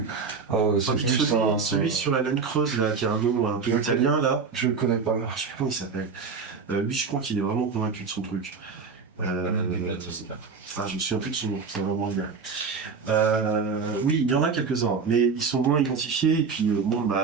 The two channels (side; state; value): left; quieter; 5.2 dB